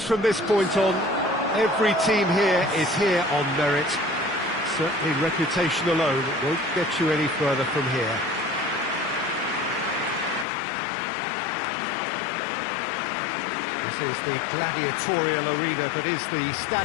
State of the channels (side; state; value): right; drops out; at 10.5 s